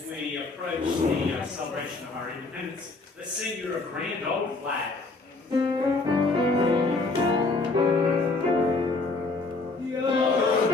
we approach the celebration of our independence, let's sing your grand old flag.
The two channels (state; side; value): quieter; right; 3.5 dB